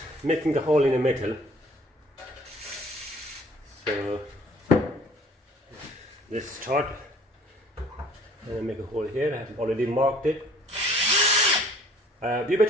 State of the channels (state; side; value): normal; both; correlation 0.55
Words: making a hole in a metal. So let's start. And make a hole here. I have already marked it. You